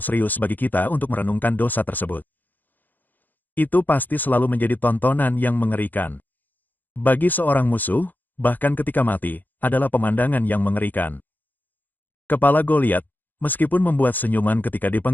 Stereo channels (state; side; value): late; right; 0.086 ms